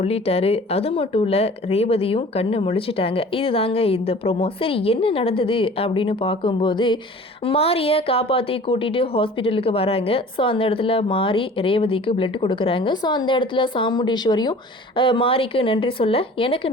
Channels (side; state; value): both; normal; correlation 0.45